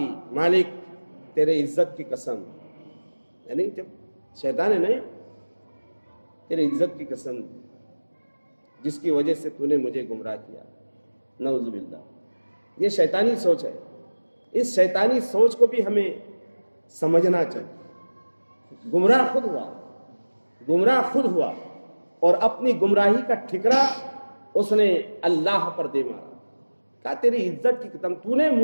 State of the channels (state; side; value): inverted; both; correlation -1.00